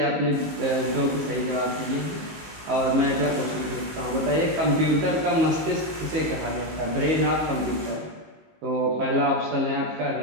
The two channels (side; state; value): left; late; 19 ms